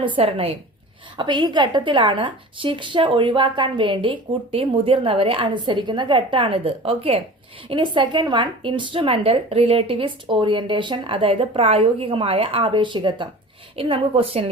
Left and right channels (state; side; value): normal; both; correlation 0.38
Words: അപ്പൊ ഈ ഘട്ടത്തിലാണ് ശിക്ഷ ഒഴിവാക്കാൻ വേണ്ടി കുട്ടി മുതിർന്നവരെ അനുസരിക്കുന്ന ഘട്ടമാണിത്. ഓക്കെ. ഇനി സെക്കൻഡ് വൺ ഇൻസ്ട്രുമെന്റൽ റിലേറ്റിവിസ്റ്റ് ഓറിയന്റേഷൻ, അതായത് പ്രായോഗികമായ ആപേക്ഷികത്വം. ഇനി നമുക്ക്